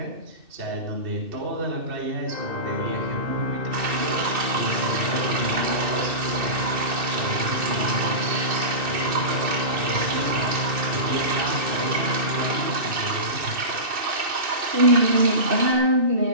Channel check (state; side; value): late; left; 2.6 ms